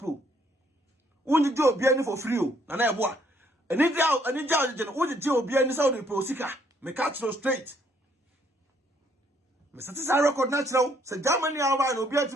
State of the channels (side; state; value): both; normal; correlation 0.67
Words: unji je obi ani for free o na ebo a eni ja jeno unji je obi ani say wo dey pro usika me catch no straight me satisa record na kire say Germany awa na obi